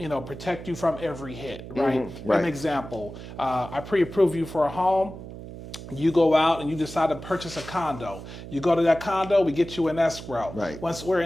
protect you from every hit, right? Right. An example, I pre-approve you for a home. You go out and you decide to purchase a condo. You go to that condo, we get you in escrow. Right. Once we're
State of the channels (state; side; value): noise; right; hum, 12 dB below the sound